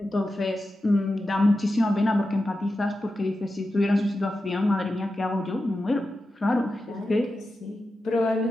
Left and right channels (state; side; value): normal; both; correlation 0.91